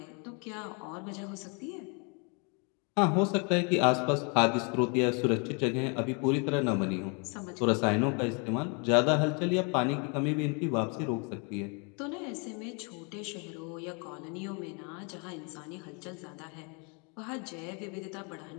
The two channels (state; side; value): quieter; right; 34.3 dB